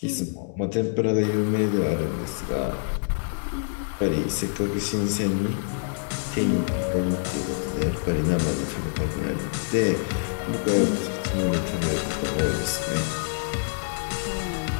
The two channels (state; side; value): silent; right; digital silence